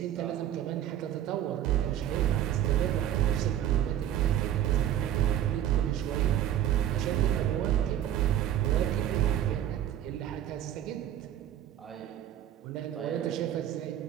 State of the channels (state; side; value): quieter; left; 11.2 dB